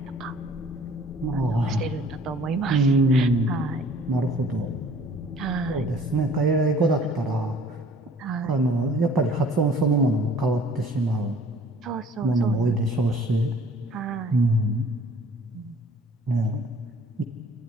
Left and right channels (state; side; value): normal; both; correlation 0.52